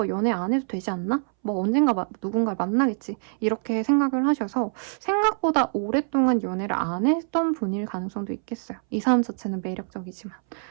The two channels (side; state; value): left; silent; 62 dB below the other